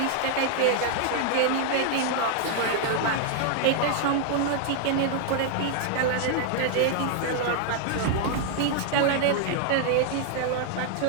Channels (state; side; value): different; both; correlation 0.00